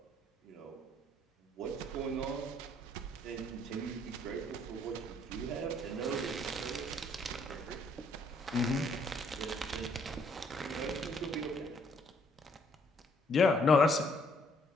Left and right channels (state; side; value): normal; both; correlation 0.66